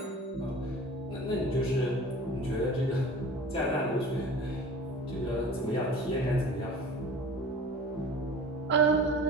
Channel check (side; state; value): both; normal; correlation 0.41